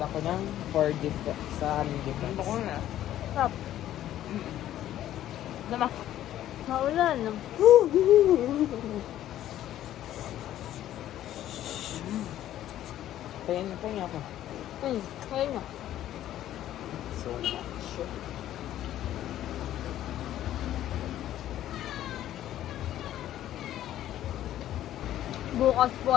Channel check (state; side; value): quieter; right; 12.5 dB